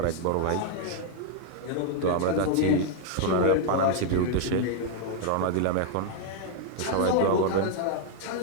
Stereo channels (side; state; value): both; different; correlation -0.01